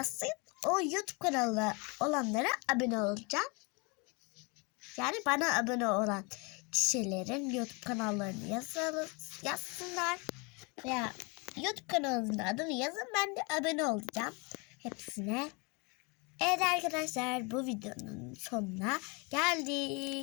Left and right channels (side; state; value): right; quieter; 30.1 dB